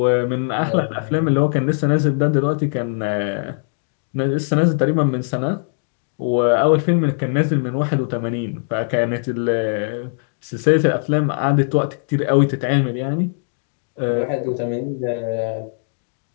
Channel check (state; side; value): silent; right; digital silence